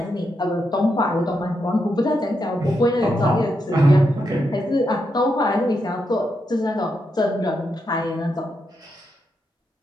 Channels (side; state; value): both; normal; correlation 0.83